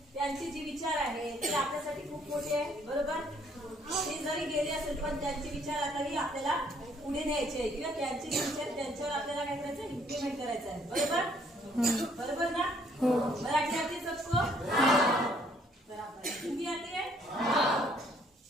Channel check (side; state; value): both; normal; correlation 0.64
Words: जे विचार आहे ते आपल्यासाठी खूप मोठे आहे, बरोबर। ते जरी गेले असेल पण त्यांचे विचार आताही आपल्याला पुढे न्यायचे आहे किंवा त्यांचे विचार त्यांच्यावर आपल्याला काय करायचं, इम्प्लिमेंट करायचं आहे, बरोबर। बरोबर ना? मराठी आती है सबको? बराबर। हिंदी आती है?